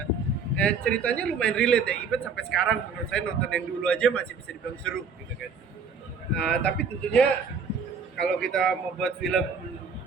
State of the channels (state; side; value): quieter; left; 5.2 dB